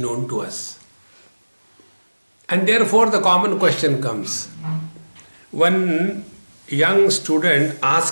to us. And therefore the common question comes. One young student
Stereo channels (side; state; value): both; inverted; correlation -1.00